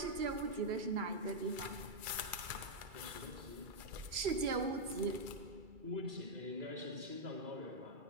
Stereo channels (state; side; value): late; left; 2.3 ms